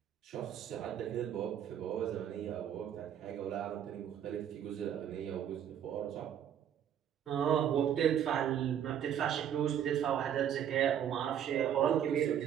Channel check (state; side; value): quieter; left; 9.5 dB